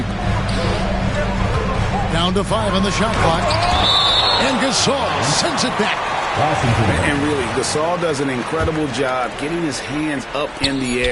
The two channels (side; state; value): both; identical; correlation 1.00